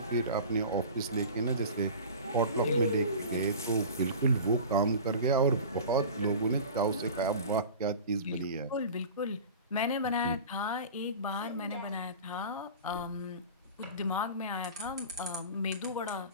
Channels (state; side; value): inverted; both; correlation -0.36